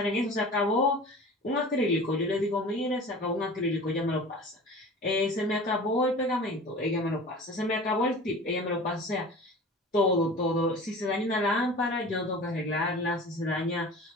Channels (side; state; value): both; normal; correlation 0.39